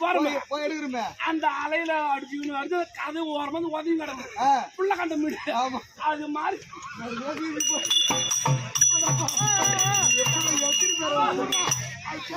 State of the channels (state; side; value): identical; both; correlation 1.00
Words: போறோம் அந்த அலையில அடிச்சுக்கணும் வருது கதை ஓரமா உதவி கிடக்கும் புள்ள கண்ட மீன் அது மாதிரி